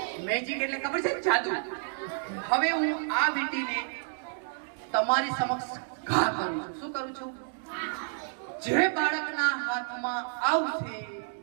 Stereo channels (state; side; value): silent; left; digital silence